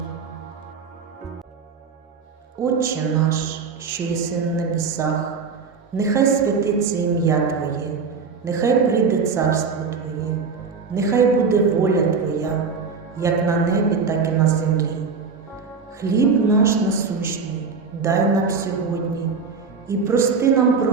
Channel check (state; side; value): quieter; left; 5.2 dB